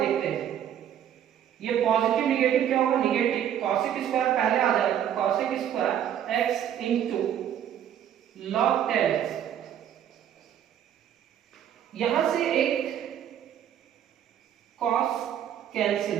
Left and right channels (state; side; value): quieter; left; 10.0 dB